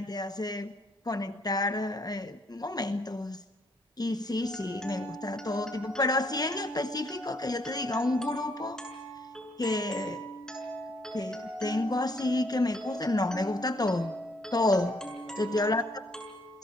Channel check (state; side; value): normal; both; correlation 0.67